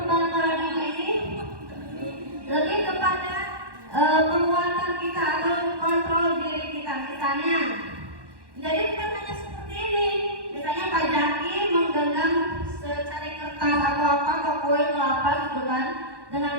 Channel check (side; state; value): left; late; 1.1 ms